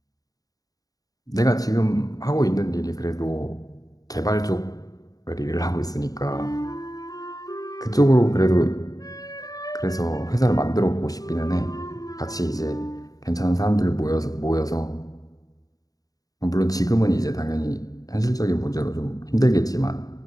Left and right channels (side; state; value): right; late; 0.18 ms